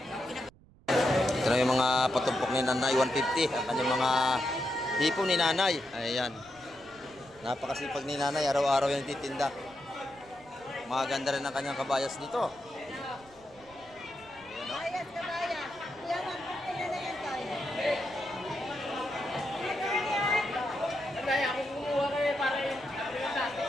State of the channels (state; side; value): noise; right; rumble, 26 dB below the sound